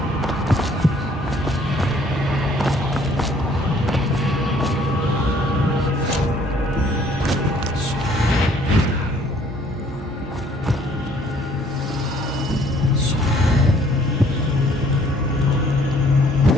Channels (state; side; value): normal; both; correlation 0.60